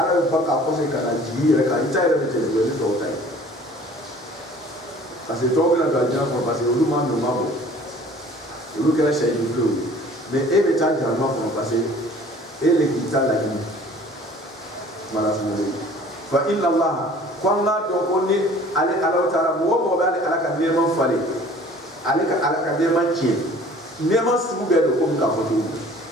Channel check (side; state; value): both; normal; correlation 0.50